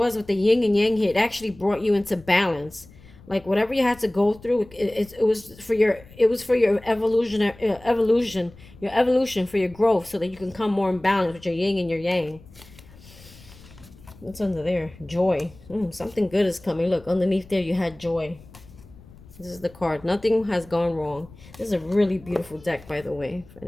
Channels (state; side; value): noise; left; rumble, 22 dB below the sound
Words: with the yin and yang here, it actually brought you into balance. Like whatever you had to go through, it was for your, it was for your your evolution, for your growth, so that you can come more in balance with your yin and your yang. What's under there? Joy. Something good is coming. Look, underneath there you had joy. This is the card. Nothing has gone wrong. This is a really beautiful deck, by the way, for